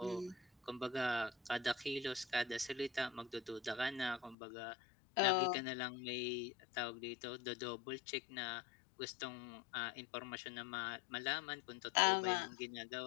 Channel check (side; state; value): right; drops out; at 4.4 s